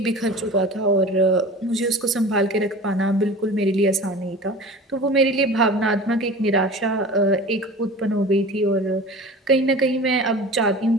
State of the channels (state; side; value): normal; both; correlation 0.38